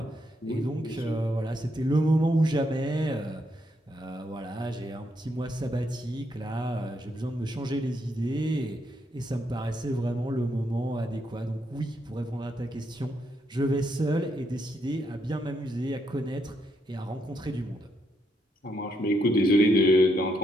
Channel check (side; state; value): both; normal; correlation 0.78